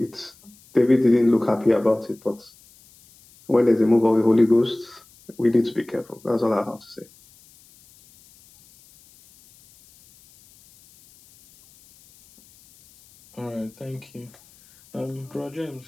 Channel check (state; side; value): noise; left; hiss, 28 dB below the sound